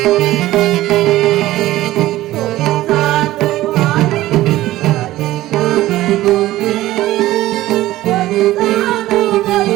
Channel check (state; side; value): quieter; left; 15.9 dB